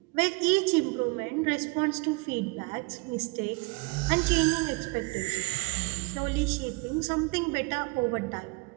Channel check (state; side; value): quieter; left; 27.4 dB